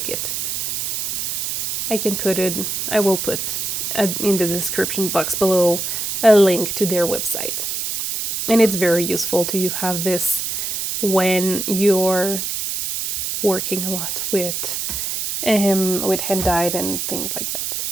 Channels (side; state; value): right; noise; hiss, 2 dB below the sound